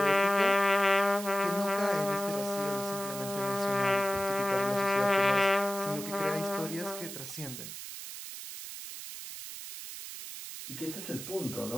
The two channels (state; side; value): noise; right; hiss, 10 dB below the sound